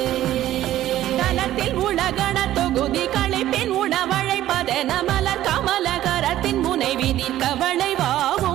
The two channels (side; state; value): left; quieter; 13.5 dB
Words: தனத்தில் உலகண தொகுதி களைப்பின் உணவழைப்பதென மலர் கமலகரத்தின் முனை விதிர்க்க